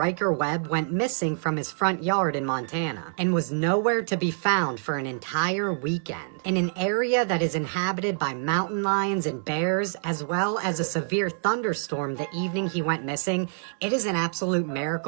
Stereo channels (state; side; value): silent; left; digital silence